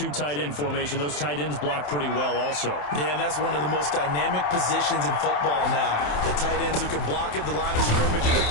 tight end formation. Those tight ends block pretty well also. Yeah, and that's one of the most dynamic positions in football now. The tight ends who can block at the line of scrimmage at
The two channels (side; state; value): right; late; 27 ms